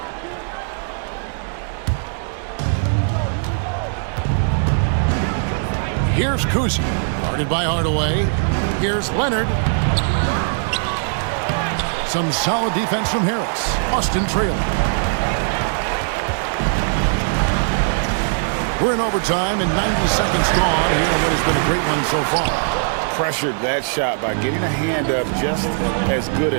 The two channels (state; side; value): silent; left; digital silence